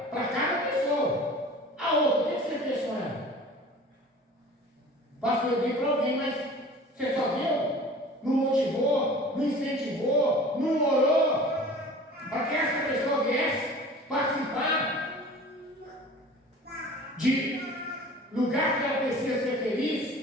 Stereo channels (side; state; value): both; normal; correlation 0.42